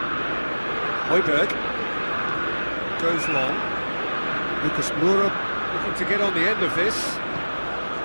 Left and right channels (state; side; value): inverted; both; correlation -1.00